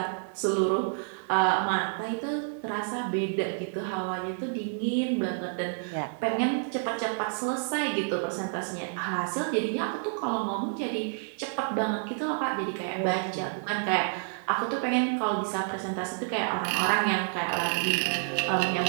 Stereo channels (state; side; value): silent; left; digital silence